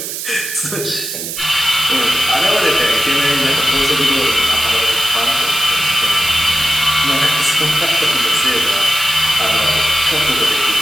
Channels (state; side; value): noise; right; hiss, 6 dB below the sound